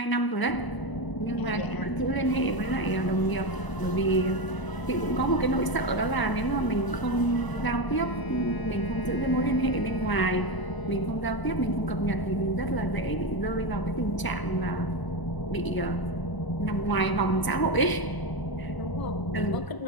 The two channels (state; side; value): late; right; 1.0 ms